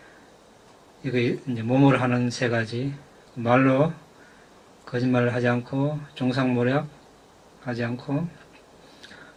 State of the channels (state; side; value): identical; both; correlation 1.00